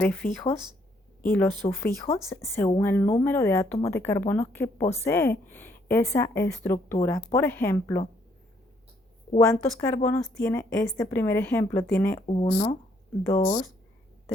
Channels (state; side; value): normal; both; correlation 0.69